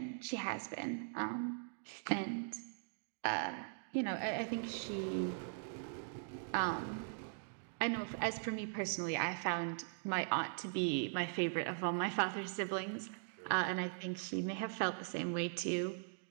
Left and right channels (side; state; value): left; silent; digital silence